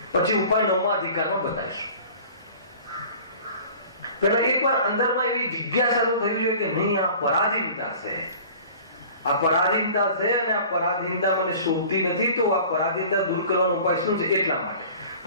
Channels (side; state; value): both; inverted; correlation -0.45